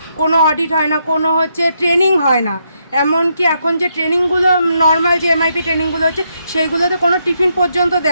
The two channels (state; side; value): inverted; both; correlation -0.78